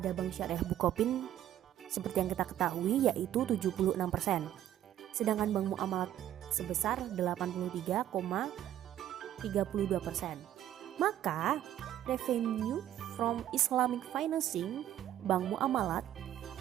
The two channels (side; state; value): left; quieter; 11.9 dB